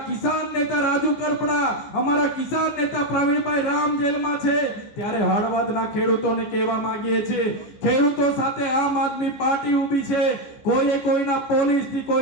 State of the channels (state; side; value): late; right; 15 ms